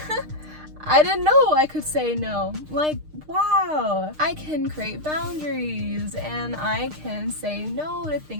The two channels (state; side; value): late; left; 6.5 ms